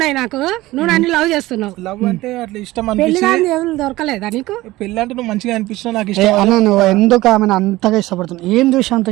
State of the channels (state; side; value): quieter; left; 18.1 dB